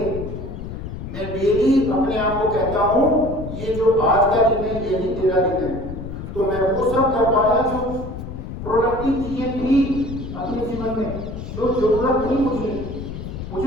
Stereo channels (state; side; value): noise; left; rumble, 8 dB below the sound